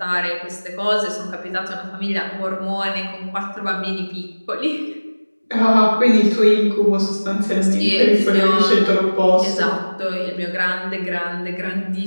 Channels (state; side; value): inverted; both; correlation -1.00